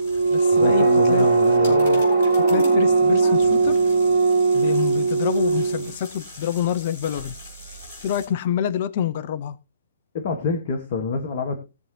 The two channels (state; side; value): inverted; both; correlation -0.72